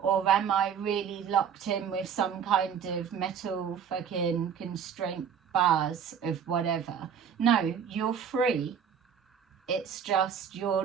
am I really locked in with some kind of metal fucking constraint bars of whatever? No, you're free. It's just you're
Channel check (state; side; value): quieter; left; 7.7 dB